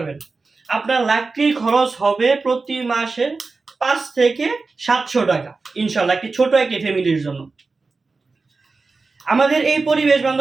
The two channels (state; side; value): quieter; left; 4.0 dB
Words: আপনার লাকড়ির খরচ হবে প্রতি মাসে 5 থেকে 700 টাকা ইনশাল্লাহ, একটি ছোট একটি ফ্যামিলির জন্য। আমাদের এই পরিবেশ